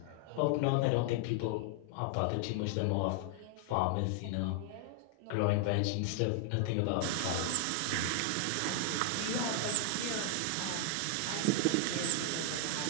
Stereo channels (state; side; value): different; both; correlation 0.00